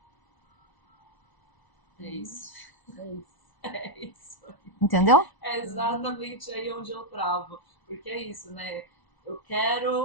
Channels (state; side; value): late; right; 1.0 ms